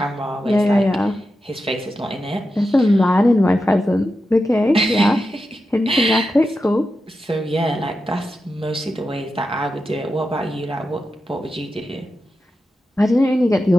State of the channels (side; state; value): both; normal; correlation 0.90